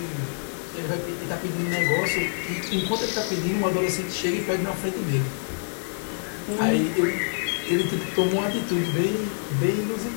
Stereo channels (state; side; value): silent; right; digital silence